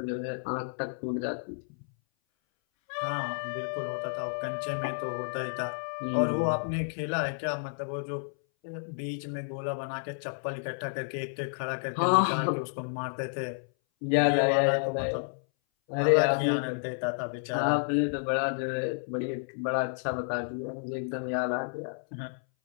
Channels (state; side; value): silent; right; 57 dB below the other